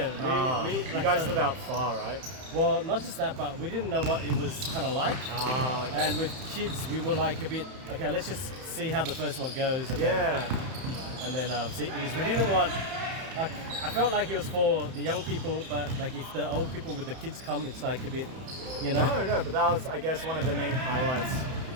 You guys live out far, right? Well, not just that, but we didn't know what it was kind of like. Okay. And with kids, we were like a bit, okay, let's just see how the first one goes. And Yeah. Then see, because we didn't want, like, I felt like it was for the young people, but like if the old people with the kids come, it's like a bit, you know? No, but that was, I guess, one of the main highlights,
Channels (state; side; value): late; left; 31 ms